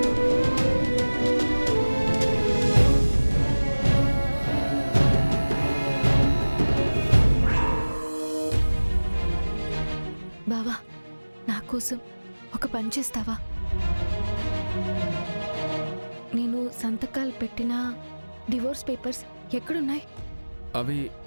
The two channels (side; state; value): both; inverted; correlation -1.00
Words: బావా, నా కోసం ఒక పని చేస్తావా? నేను సంతకాలు పెట్టిన డివోర్స్ పేపర్స్ ఎక్కడున్నాయి? అవి